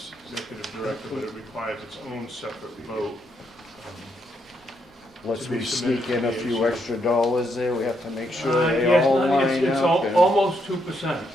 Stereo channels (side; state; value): both; normal; correlation 0.77